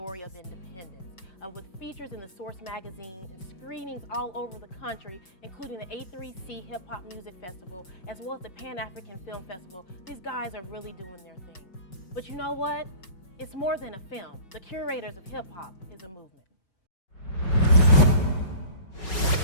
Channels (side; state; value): right; late; 5.3 ms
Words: of Independence. With features in the Source magazine and screenings all over the country, including the A3C Hip Hop Music Festival, as well as the Pan-African Film Festival. These guys are really doing their thing. But you know what? It's more than a film. The Curators of Hip Hop is a movement.